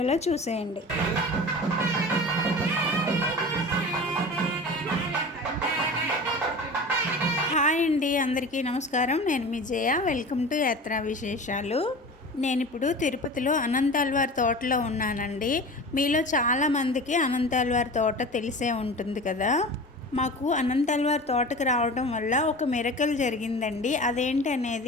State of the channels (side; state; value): both; normal; correlation 0.35